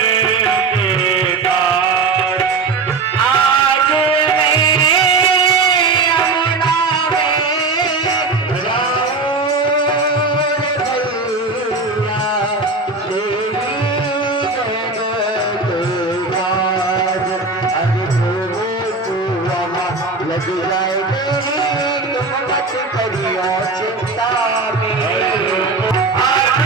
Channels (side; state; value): left; quieter; 3.9 dB